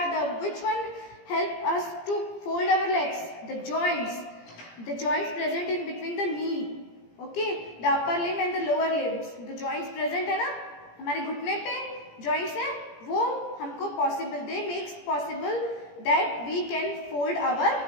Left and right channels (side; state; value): right; late; 17 ms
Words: which one help us to fold our legs? The joints present in between the knee. Okay, the upper limb and the lower limbs. The joints present है ना हमारे घुटने पे joints हैं, वो हमको possible, they makes possible that we can fold our